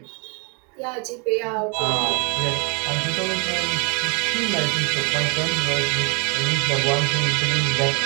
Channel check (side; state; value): left; quieter; 35.0 dB